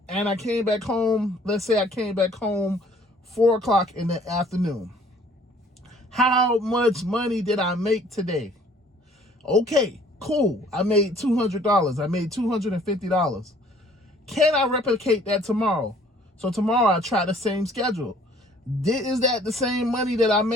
and I came back home. Let's say I came back home 4 o'clock in the afternoon. How much money did I make today? Okay, cool. I made $200. I made $250. Can I replicate that tomorrow? So tomorrow I try the same schedule. Is that the same money that I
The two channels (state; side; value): normal; both; correlation 0.56